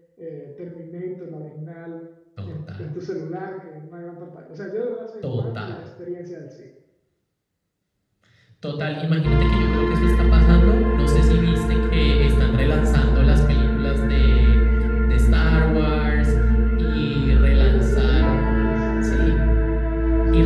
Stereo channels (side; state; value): both; identical; correlation 1.00